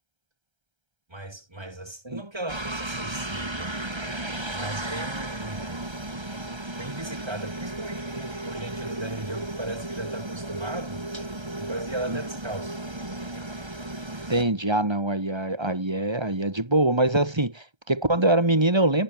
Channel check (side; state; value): left; late; 1.3 ms